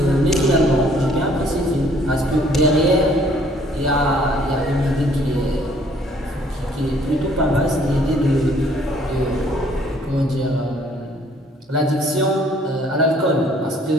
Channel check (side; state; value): both; normal; correlation 0.60